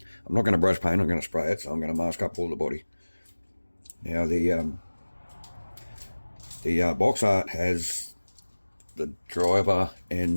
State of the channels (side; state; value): both; inverted; correlation -1.00